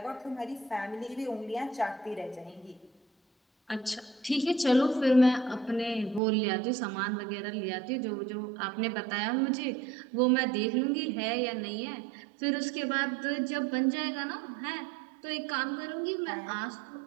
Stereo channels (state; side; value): drops out; left; at 6.2 s